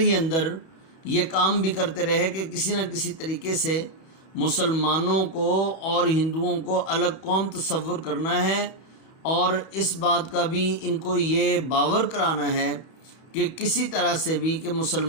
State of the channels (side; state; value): right; late; 31 ms